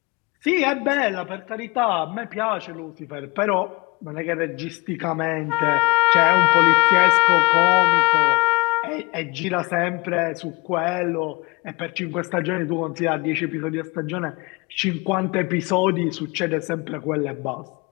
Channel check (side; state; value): right; quieter; 25.9 dB